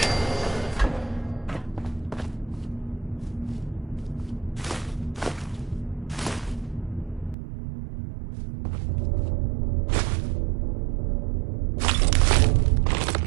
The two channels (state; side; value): drops out; left; at 7.4 s